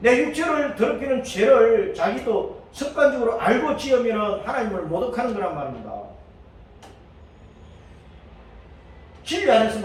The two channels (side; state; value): both; identical; correlation 1.00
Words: 육체를 더럽히는 죄를 자기도 습관적으로 알고 지으면 하나님을 모독하는 거란 말입니다. 진리